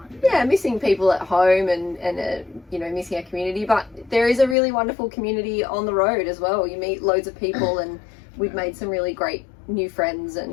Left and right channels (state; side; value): drops out; right; at 4.5 s